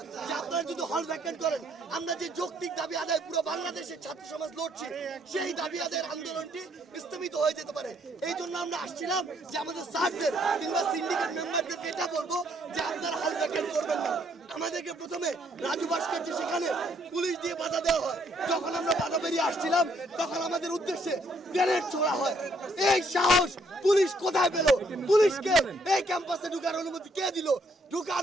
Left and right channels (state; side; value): normal; both; correlation 0.69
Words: যে আপনারা যদি হল ভ্যাকেন্ট করেন, আমরা যে যৌক্তিক দাবি আদায় পুরো বাংলাদেশের ছাত্র সমাজ লড়ছে, সেই দাবি আদায়ের আন্দোলনটি স্থগিত হয়ে যেতে পারে। এই জন্য আমরা আসছিলাম যে আমাদের স্যারদের কিংবা সিন্ডিকেট মেম্বারদেরকে এটা বলবো যে আপনারা হল ভ্যাকেন্ট করবেন না। আমাদেরকে প্রথমে রাজু ভাস্কর্যে সেখানে পুলিশ দিয়ে বাধা দেওয়া হয়। যখন আমরা বাধা বেরিয়ে আসছিলাম তখন আমাদের উদ্দেশ্যে গ্রেনেড ছোড়া হয়। এই সাহস পুলিশ কোথায় পেল? পুলিশকে এই ক্যাম্পাসে ঢুকার অনুমতি কে দিল?